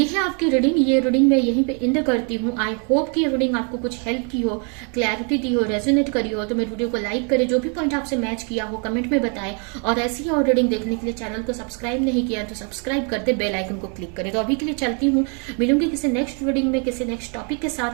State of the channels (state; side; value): quieter; left; 38.2 dB